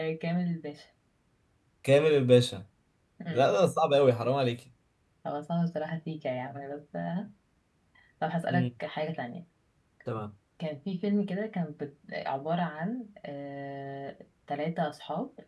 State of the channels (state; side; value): identical; both; correlation 1.00